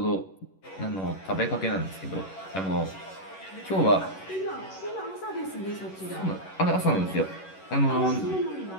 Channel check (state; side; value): late; right; 11 ms